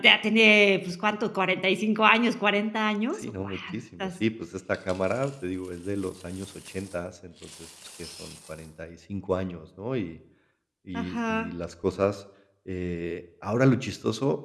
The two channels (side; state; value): both; identical; correlation 1.00